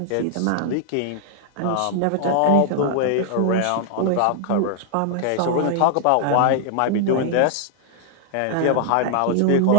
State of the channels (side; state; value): both; different; correlation -0.01